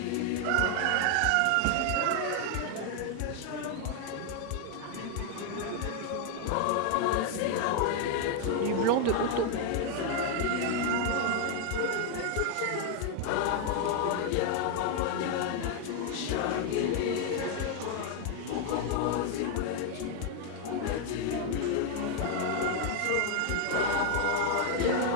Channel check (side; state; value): both; different; correlation 0.01